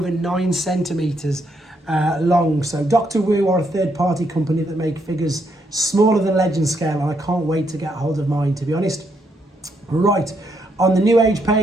9 centimetres long. So Dr. Wu are a third party company that make figures smaller than Legend scale, and I can't wait to get hold of mine, to be honest. Right, on the New Age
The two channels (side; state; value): both; normal; correlation 0.76